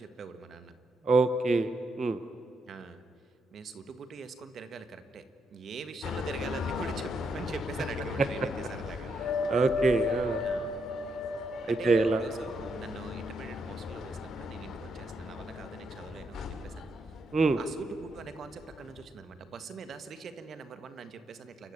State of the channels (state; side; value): normal; both; correlation 0.78